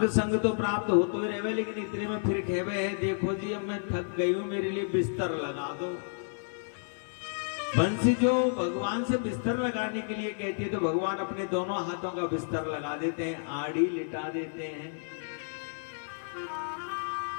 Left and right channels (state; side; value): silent; right; 57 dB below the other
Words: संग तो प्राप्त हो तो ही रहवे, लेकिन इतने में फिर कहवे है, देखो जी अब मैं थक गई हूं, मेरे लिए बिस्तर लगा दो। बंसी जो भगवान से बिस्तर लगाने के लिए कहती है तो भगवान अपने दोनों हाथों का बिस्तर लगा देते हैं, आड़ी लिटा देते हैं।